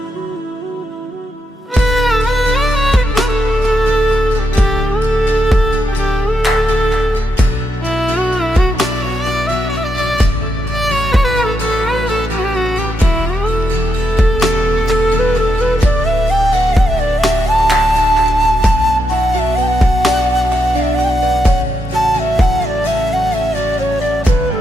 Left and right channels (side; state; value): both; normal; correlation 0.82